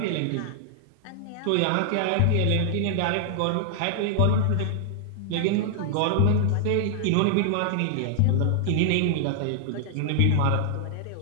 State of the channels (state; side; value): different; both; correlation -0.01